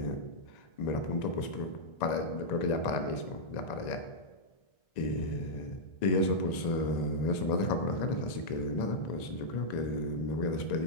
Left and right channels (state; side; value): late; right; 1.9 ms